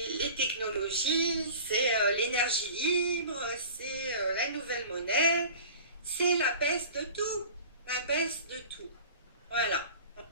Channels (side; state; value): both; inverted; correlation -0.41